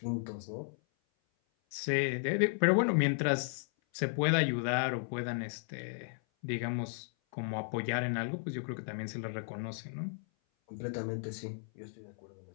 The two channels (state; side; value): silent; right; 55 dB below the other